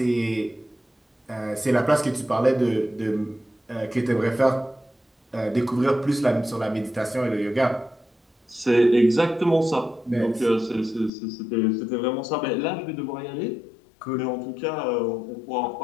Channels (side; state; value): right; drops out; at 11.1 s